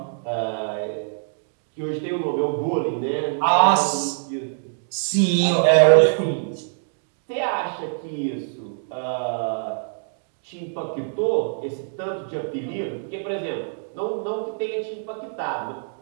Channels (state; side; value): silent; left; digital silence